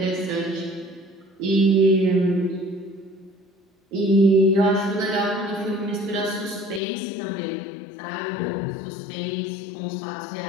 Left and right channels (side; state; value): right; drops out; at 6.8 s